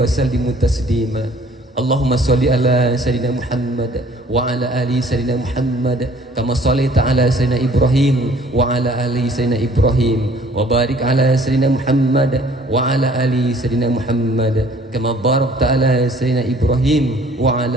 sallimu taslima. Allahumma sholli ala sayyidina Muhammad wa ala ali sayyidina Muhammad kama shallaita ala sayyidina Ibrahim wa ala ali sayyidina Ibrahim wa barik ala sayyidina Muhammad wa ala ali sayyidina Muhammad kama barakta ala sayyidina Ibrahim wa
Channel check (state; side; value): normal; both; correlation 0.55